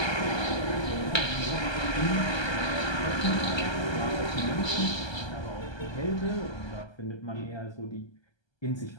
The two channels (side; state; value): right; late; 1.3 ms